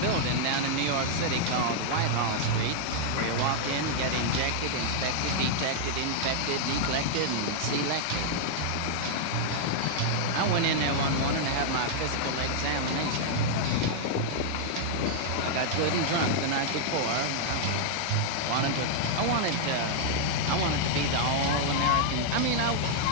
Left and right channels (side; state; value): both; different; correlation -0.01